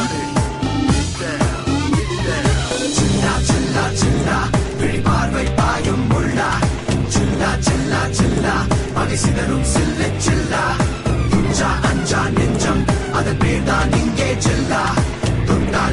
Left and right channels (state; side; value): identical; both; correlation 1.00